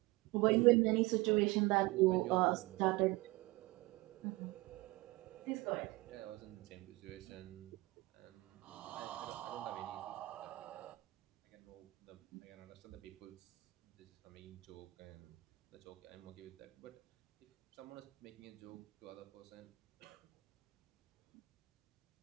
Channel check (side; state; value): left; quieter; 22.1 dB